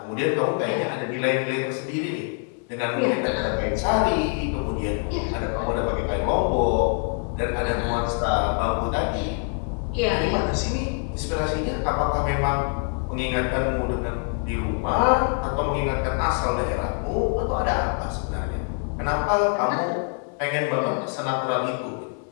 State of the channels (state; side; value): quieter; right; 39.9 dB